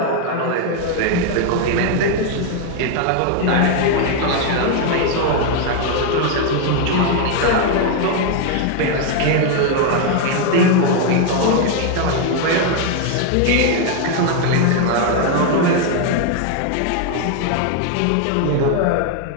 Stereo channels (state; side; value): different; both; correlation 0.01